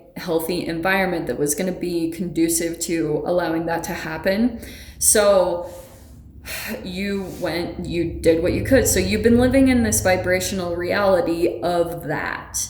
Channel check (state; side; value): identical; both; correlation 1.00